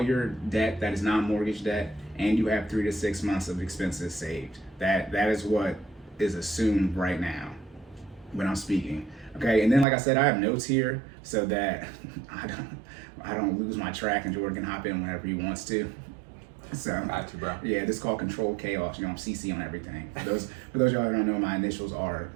your debt that is non-mortgage debt and you have 3 to 6 months of expenses saved. That is what is assumed right now. when I'm speaking. Okay, and then like I said, I have notes here so that I don't lose my track and Jordan can hop in whenever he wants to. So Got you, bro. yeah, this is called controlled chaos. You know, I'm CC on everything. For those of y'all who don't know, my initials are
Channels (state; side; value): drops out; left; at 9.9 s